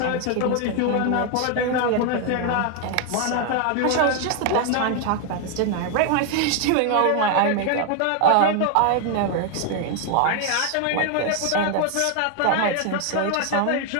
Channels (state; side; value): different; both; correlation 0.01